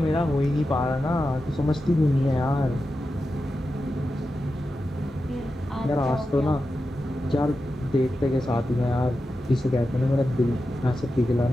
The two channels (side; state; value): both; normal; correlation 0.91